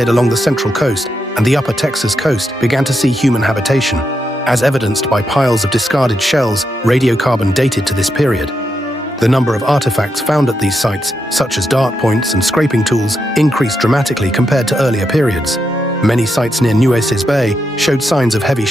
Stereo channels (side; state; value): both; normal; correlation 0.83